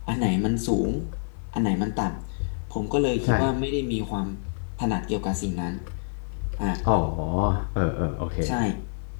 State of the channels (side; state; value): right; silent; digital silence